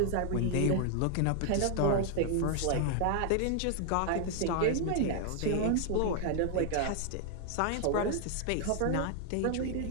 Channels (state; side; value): different; both; correlation 0.00